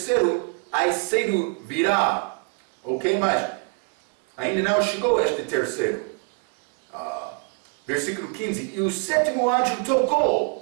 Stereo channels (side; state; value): left; quieter; 38.0 dB